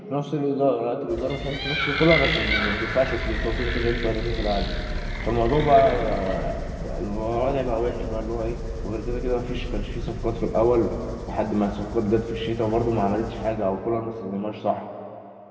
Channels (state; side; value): identical; both; correlation 1.00